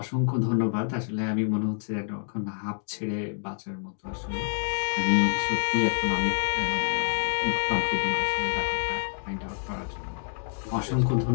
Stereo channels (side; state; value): right; silent; digital silence